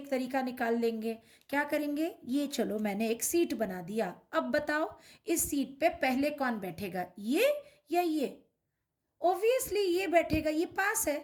तरीका निकाल लेंगे। क्या करेंगे, ये चलो मैंने एक सीट बना दिया। अब बताओ इस सीट पे पहले कौन बैठेगा, ये या ये? ऑब्वियसली ये बैठेगा, ये पास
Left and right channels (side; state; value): both; identical; correlation 1.00